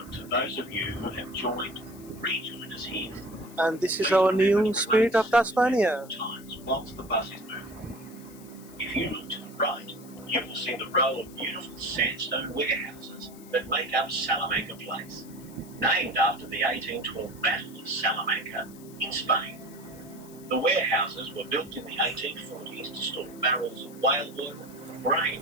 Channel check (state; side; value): noise; left; hiss, 21 dB below the sound